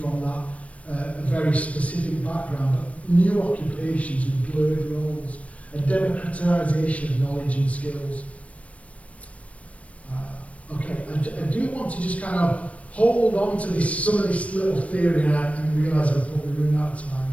that a very specific background, but new occupations with blurred roles, a democratisation of knowledge and skills. I do want to just kind of hold on to some of this little theory, and I realise I'm probably running out of time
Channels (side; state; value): right; late; 0.065 ms